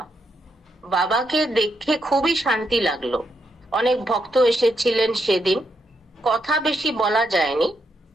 বাবাকে দেখে খুবই শান্তি লাগলো। অনেক ভক্ত এসেছিলেন সেদিন, কথা বেশি বলা যায়নি।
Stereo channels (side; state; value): both; normal; correlation 0.80